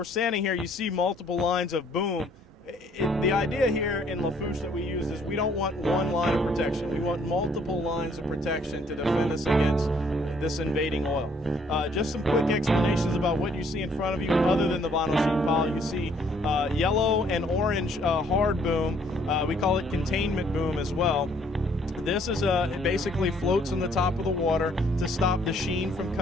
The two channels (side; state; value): both; normal; correlation 0.64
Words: standing here, you see multiple lines of boom. The idea here in Lafourche that we use is we don't want one line of protection. We want multiple lines of protection to defend us against this invading oil. Just some quick explanations about what you see in front of you other than the vinyl sheet pile. You see yellow and orange hard boom. We call it containment boom as well. This is it basically floats on the top of the water to stop the sheen from